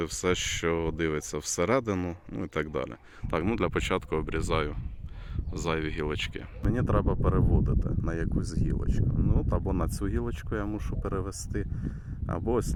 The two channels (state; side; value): identical; both; correlation 1.00